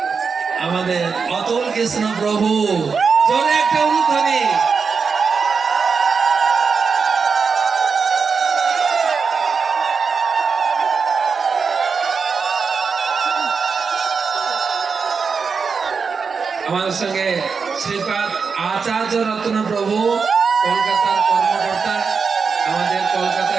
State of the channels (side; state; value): left; quieter; 5.4 dB